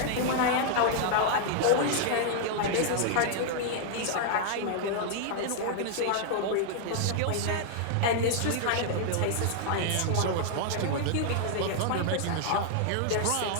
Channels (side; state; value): both; different; correlation -0.01